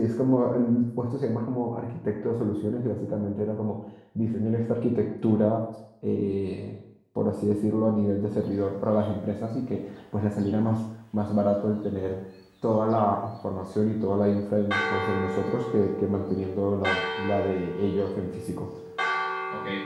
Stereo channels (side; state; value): both; identical; correlation 1.00